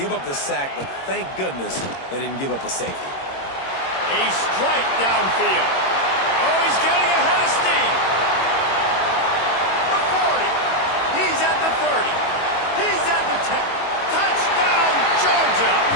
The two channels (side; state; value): right; late; 22 ms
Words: up the sack, but thank goodness they didn't give up a safety. A strike downfield. Oh, he's getting ahead of steam. The 40. He's at the 30. He's at the 10. Touchdown, Georgia.